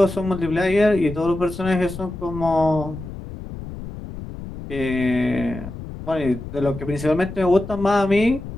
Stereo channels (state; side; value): noise; left; rumble, 11 dB below the sound